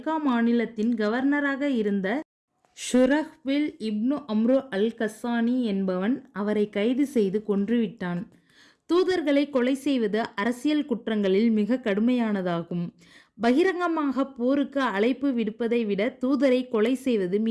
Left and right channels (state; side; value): identical; both; correlation 1.00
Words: மாநிலத்தின் கவர்னராக இருந்த ஷுரஹ்பில் இப்னு அம்ரு அல் கஸ்ஸானி என்பவன் அவரை கைது செய்து கொன்றுவிட்டான். தூதர்களை கொலை செய்வது அரசியல் குற்றங்களில் மிக கடுமையானதாகும். பகிரங்கமாக போருக்கு அழைப்பு விடுப்பதை விட தூதரை கொலை செய்வது